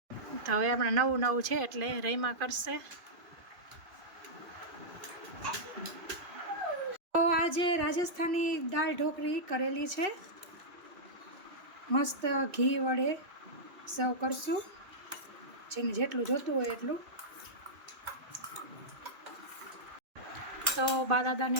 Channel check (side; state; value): left; late; 2.6 ms